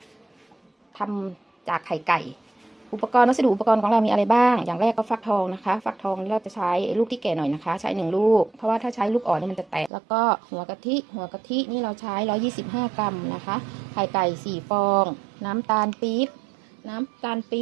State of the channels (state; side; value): drops out; left; at 9.9 s